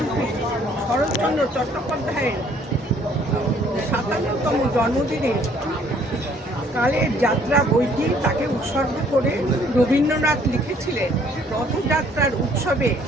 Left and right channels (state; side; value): normal; both; correlation 0.61